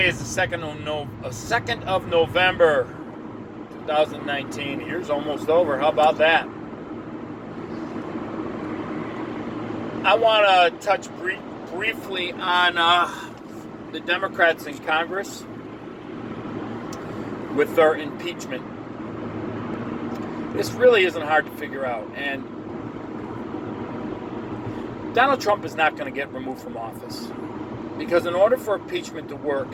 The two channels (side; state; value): both; identical; correlation 1.00